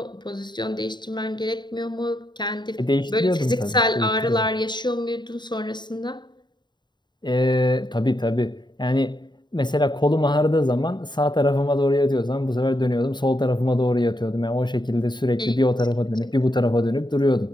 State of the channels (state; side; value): late; right; 0.22 ms